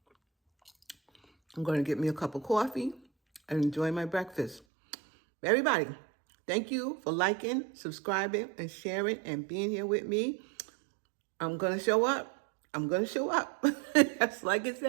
going to get me a cup of coffee and enjoy my breakfast. Everybody, thank you for liking, subscribing, and sharing, and being here with me. I'm going to show up. I'm going to show up. That's like I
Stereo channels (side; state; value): left; drops out; at 4.6 s